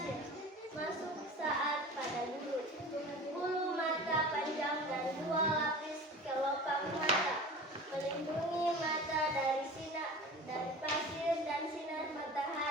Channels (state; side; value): normal; both; correlation 0.37